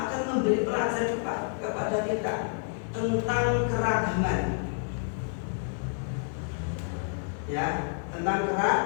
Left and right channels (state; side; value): silent; right; digital silence